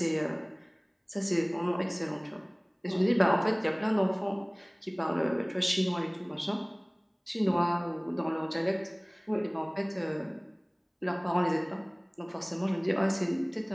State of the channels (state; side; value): identical; both; correlation 1.00